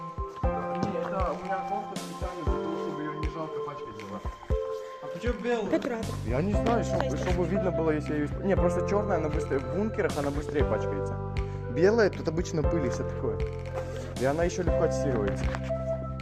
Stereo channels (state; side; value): identical; both; correlation 1.00